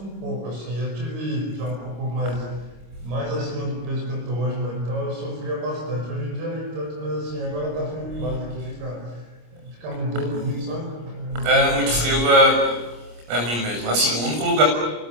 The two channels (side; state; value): left; late; 25 ms